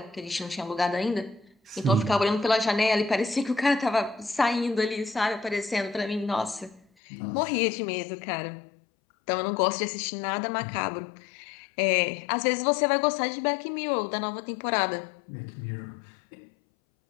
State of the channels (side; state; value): right; drops out; at 6.8 s